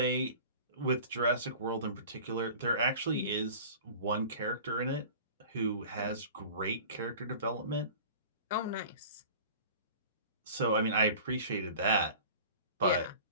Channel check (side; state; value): both; inverted; correlation -0.41